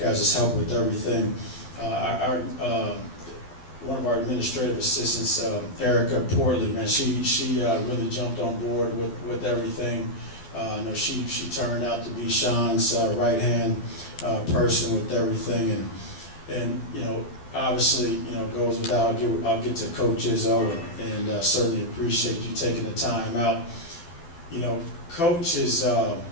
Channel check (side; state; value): right; late; 12 ms